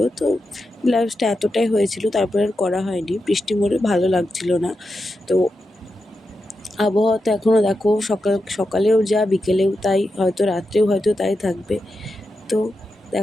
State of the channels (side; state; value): both; normal; correlation 0.88